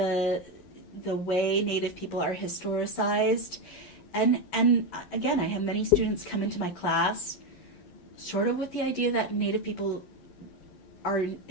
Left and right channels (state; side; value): late; right; 11 ms